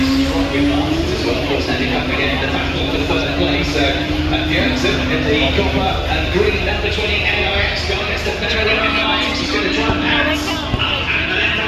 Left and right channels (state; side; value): identical; both; correlation 1.00